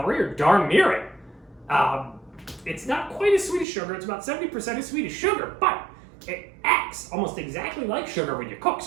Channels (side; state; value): left; drops out; at 3.7 s